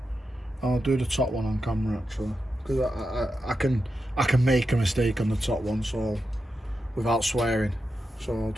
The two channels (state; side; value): normal; both; correlation 0.88